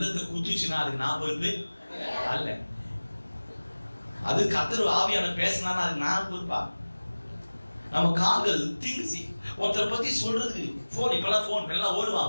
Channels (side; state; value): both; inverted; correlation -1.00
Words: குத்துச்சுன்னா அதுக்கு நான் பொறுப்பு அல்ல. அது கர்த்தர் ஆவியான பேசினா அதுக்கு நான் பொறுப்பா? நம்ம கால்கள் தீங்கு ஒருத்தரை பத்தி சொல்றதுக்கு போன், இப்பெல்லாம் போன் எல்லாம்